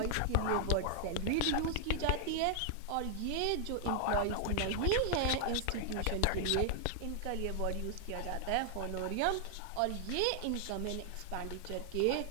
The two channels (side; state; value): both; different; correlation 0.00